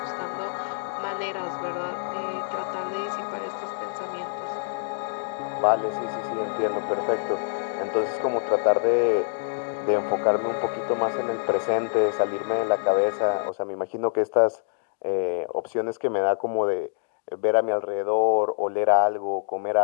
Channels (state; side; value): silent; right; digital silence